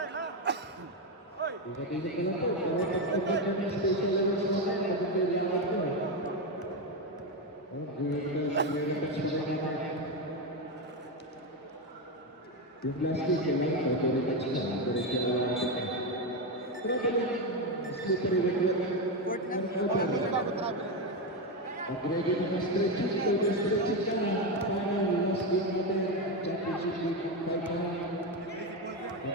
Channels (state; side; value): normal; both; correlation 0.10